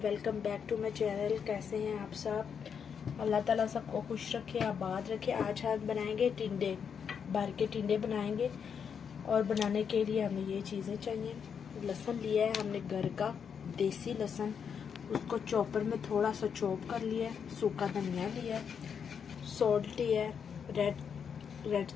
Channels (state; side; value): quieter; right; 7.0 dB